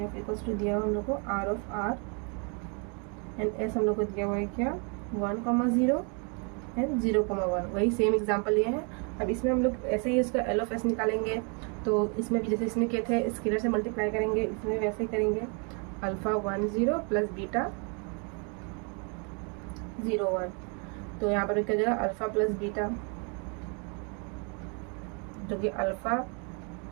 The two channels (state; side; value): quieter; left; 36.5 dB